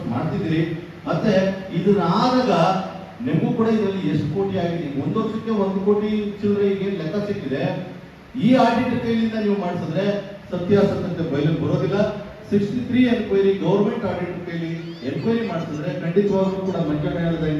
ಮಾಡ್ತಿದ್ದೀರಿ. ಮತ್ತೆ ಇದನ್ನ ಆದಾಗ ನಿಮಗೂ ಕೂಡ ಇದರಲ್ಲಿ ಎಷ್ಟು ಕೋಟಿ ಆಗಿದೆ? 1 ವರ್ಷಕ್ಕೆ 1 ಕೋಟಿ ಚಿಲ್ಲರೆಗೆ ಲೆಕ್ಕ ಸಿಕ್ಕಿದೆ. ಈ ಆಡಿಟರ್ ಕೈಲಿಂದ ನೀವು ಮಾಡಿಸಿದ್ರೆ ಸತ್ಯಾಸತ್ಯತೆ ಬಯಲಿಗೆ ಬರೋದಿಲ್ಲ. 63 ಎನ್ಕ್ವೈರಿ ಗೌರ್ಮೆಂಟ್ ಆಡಿಟ್ ಕೈಲಿ ಎನ್ಕ್ವೈರಿ ಮಾಡಿಸಿದ್ರೆ ಖಂಡಿತವಾಗ್ಲೂ ಕೂಡ ಮಂಜಣ್ಣ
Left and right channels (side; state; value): both; identical; correlation 1.00